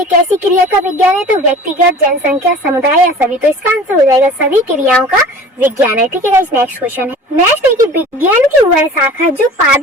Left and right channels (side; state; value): both; normal; correlation 0.42